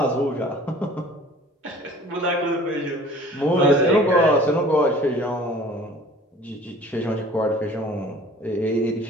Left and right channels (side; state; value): both; normal; correlation 0.48